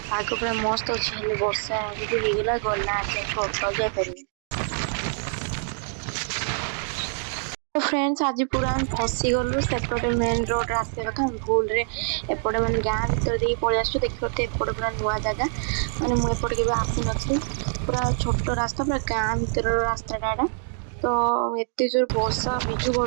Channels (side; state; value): left; silent; 59 dB below the other